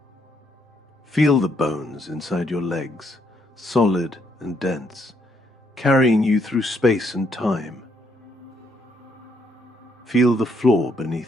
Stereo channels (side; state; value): both; normal; correlation 0.73